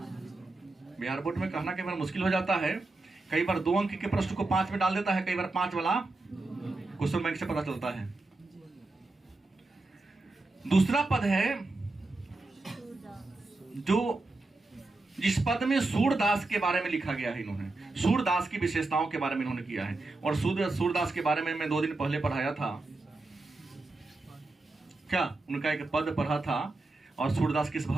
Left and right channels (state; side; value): quieter; left; 3.1 dB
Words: बिहार बोर्ड में कहना कई बार मुश्किल हो जाता है, कई बार 2 अंक के प्रश्न को 5 में डाल देता है, कई बार 5 वाला क्वेश्चन बैंक से पता चलता है। दूसरा पद है जो जिस पद में सूरदास के बारे में लिखा गया है, इन्होंने सूरदास की विशेषताओं के बारे में इन्होंने किया है। और सूरदास के बारे में मैं 2 दिन पहले पढ़ाया था, क्या उनका एक पद पढ़ा था। और सूरदास किस